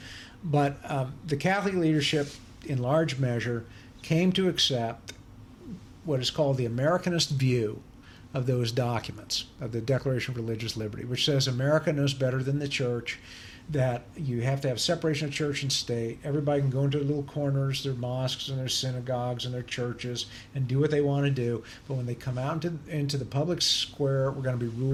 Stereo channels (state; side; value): identical; both; correlation 1.00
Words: But the Catholic leadership, in large measure, came to accept what is called the Americanist view of those documents, of the Declaration of Religious Liberty, which says America knows better than the church, that you have to have separation of church and state. Everybody can go into their little corners, their mosques and their synagogues and their churches, and do what they want to do. But when they come out into the public square, we're going to be